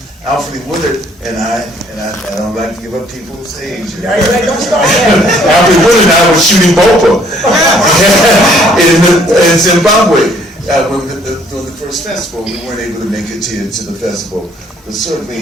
Alfre Woodard and I don't like to give up people's age. Don't start that. Alfre Woodard and I were shooting Bopa in Zimbabwe during the first festival. We weren't able to make it to the festival. But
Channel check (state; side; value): normal; both; correlation 0.62